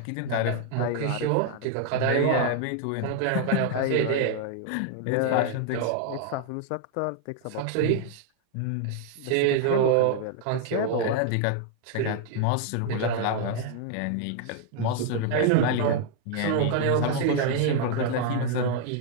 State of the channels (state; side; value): different; both; correlation 0.00